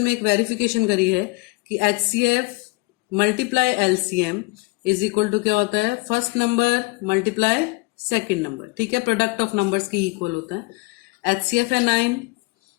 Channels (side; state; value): right; quieter; 26.6 dB